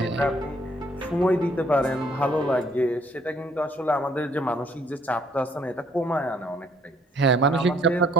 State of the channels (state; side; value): normal; both; correlation 0.64